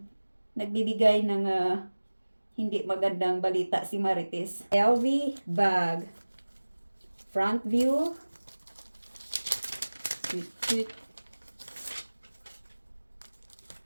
Nagbibigay ng hindi magandang balita si Marites. LV bag. Front view. Cute.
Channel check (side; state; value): both; inverted; correlation -1.00